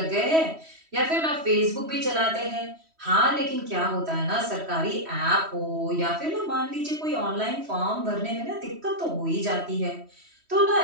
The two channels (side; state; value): left; late; 3.1 ms